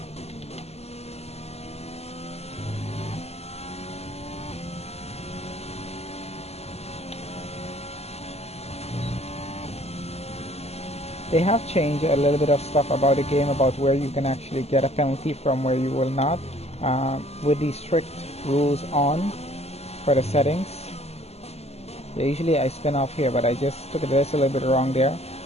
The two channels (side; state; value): right; late; 0.31 ms